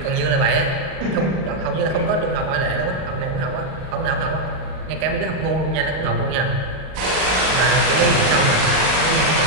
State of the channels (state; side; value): late; left; 38 ms